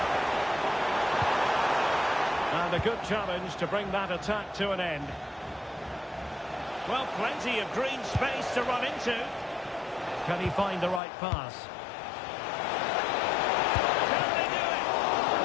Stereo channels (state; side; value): drops out; right; at 11.0 s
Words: And a good challenge to bring that attack to an end. Well, plenty of green space to run into. Can he find the right pass? Can they do it?